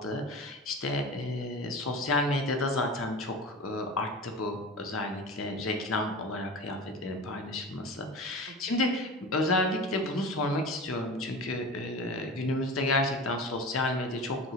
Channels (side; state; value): both; normal; correlation 0.32